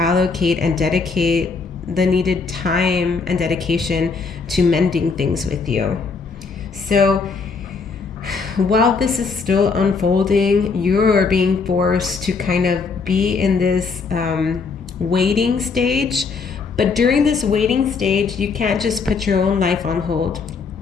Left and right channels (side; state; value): right; quieter; 4.8 dB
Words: and dedicate the needed time and dedication to mending things with you. So while this is still unfolding, you're being forced to kind of be in this waiting stage. But during this waiting stage, you can't just put your own life on hold.